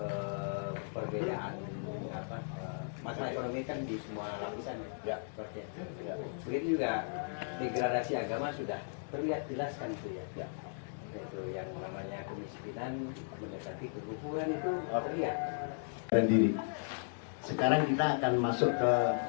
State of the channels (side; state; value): right; silent; digital silence